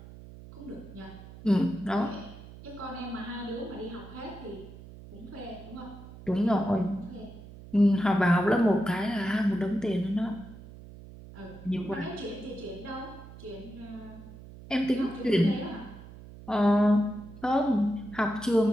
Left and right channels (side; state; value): right; noise; hum, 16 dB below the sound